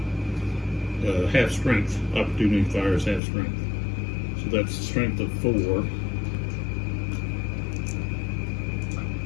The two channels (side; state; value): right; drops out; at 3.2 s